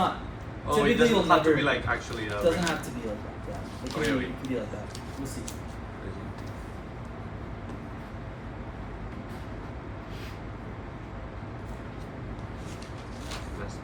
Oh, it typically doesn't you'll have to never. be like actually. It doesn't have to be like that. Yeah. It can, Okay, be, okay. it can be like that. We'll see.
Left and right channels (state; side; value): identical; both; correlation 1.00